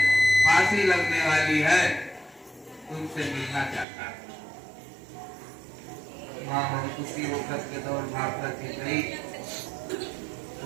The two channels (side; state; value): left; drops out; at 3.9 s